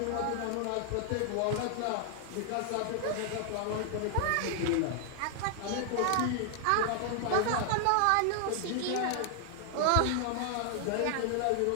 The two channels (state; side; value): different; both; correlation 0.00